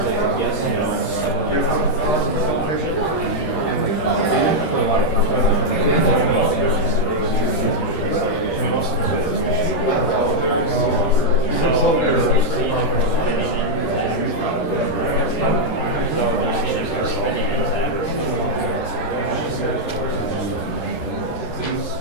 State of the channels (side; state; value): right; late; 13 ms